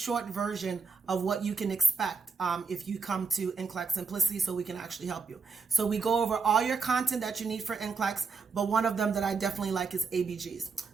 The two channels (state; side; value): quieter; left; 5.0 dB